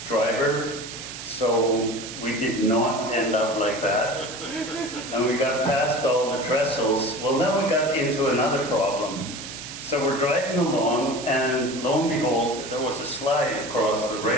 driver, so we did not end up like that. And we got past all the trestles. Well, now we got into another problem. So we're driving along, and lo and behold, there was a slide across the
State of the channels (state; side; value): noise; right; hiss, 10 dB below the sound